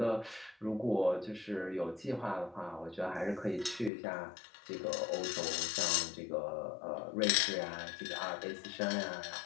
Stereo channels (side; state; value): right; drops out; at 3.9 s